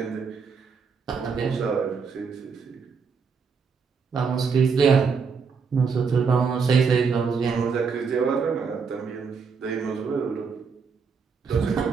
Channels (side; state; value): left; quieter; 5.6 dB